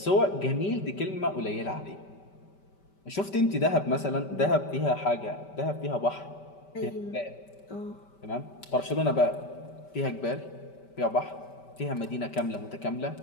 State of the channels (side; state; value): right; late; 5.1 ms